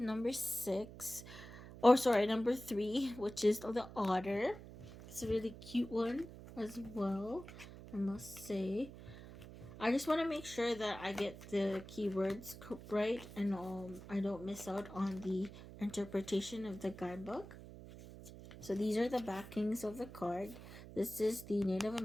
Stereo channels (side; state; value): right; noise; hum, 14 dB below the sound